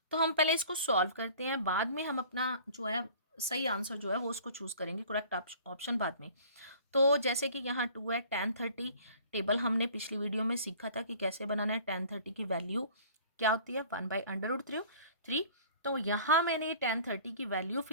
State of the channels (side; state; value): both; inverted; correlation -0.48